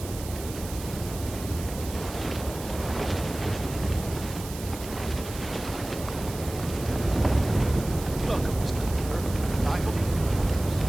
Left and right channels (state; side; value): noise; right; hiss, 13 dB below the sound